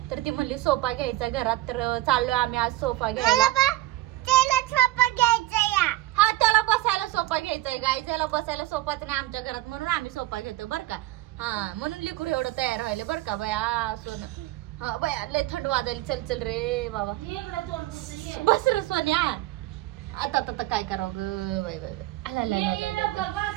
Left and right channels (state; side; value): quieter; left; 16.7 dB